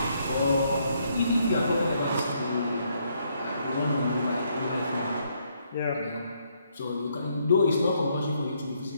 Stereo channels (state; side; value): inverted; both; correlation -0.73